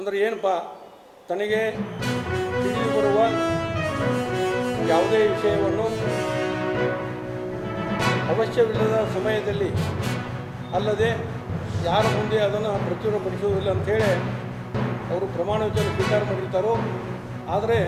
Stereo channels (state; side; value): identical; both; correlation 1.00